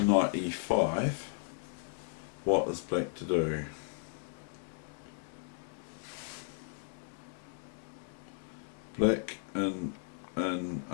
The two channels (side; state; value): right; silent; digital silence